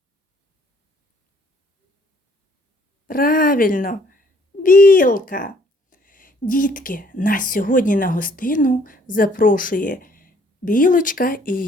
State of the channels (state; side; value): normal; both; correlation 0.61